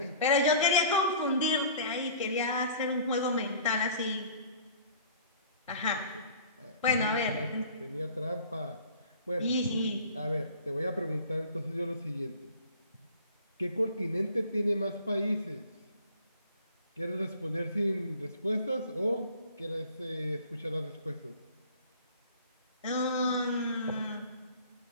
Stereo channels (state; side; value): inverted; both; correlation -0.47